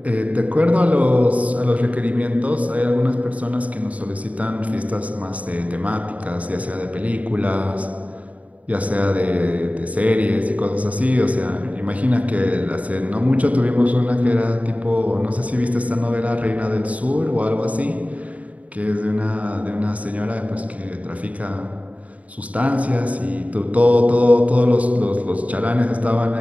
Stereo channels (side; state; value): left; late; 0.069 ms